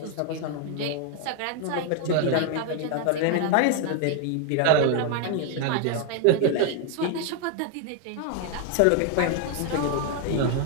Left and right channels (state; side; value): different; both; correlation 0.00